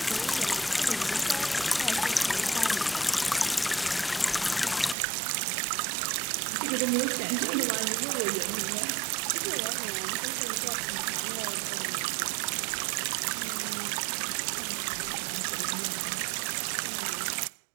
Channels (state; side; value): drops out; left; at 5.0 s